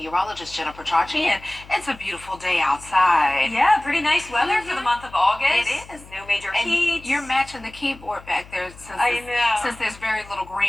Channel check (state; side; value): noise; left; hum, 20 dB below the sound